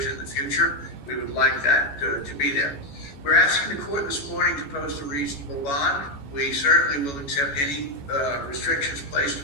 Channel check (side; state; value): right; late; 14 ms